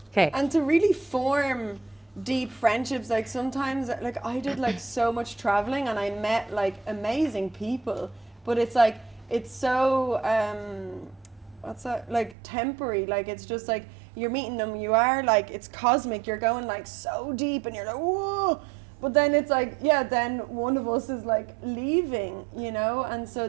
okay. And to really form deep friendships, like sometimes, like I did like so much traveling and I met like amazing people, but it's like it's so what's that, like temporary, like it's just like you're meeting them, you are like, it's cosmic, you're going like so deep and you're like whoa, but then it's like, yeah, then one of us is like leaving, you know. And so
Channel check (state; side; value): drops out; left; at 12.4 s